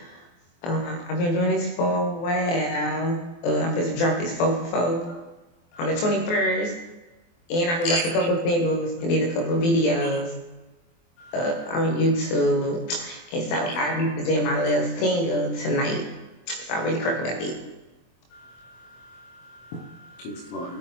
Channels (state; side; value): late; right; 24 ms